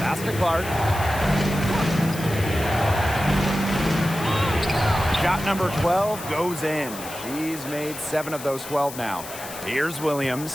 to Clark. Shot number 12 goes in. She's made 7 of those 12 now. Here's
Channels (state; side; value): noise; left; hiss, 12 dB below the sound